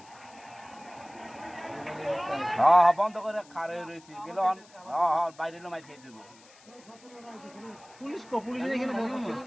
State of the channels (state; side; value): noise; left; hiss, 25 dB below the sound